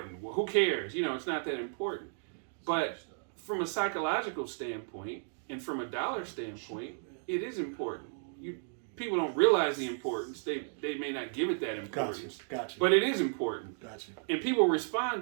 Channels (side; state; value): left; silent; digital silence